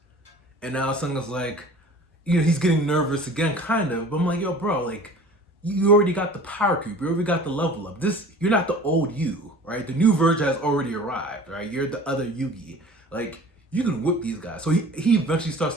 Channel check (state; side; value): normal; both; correlation 0.44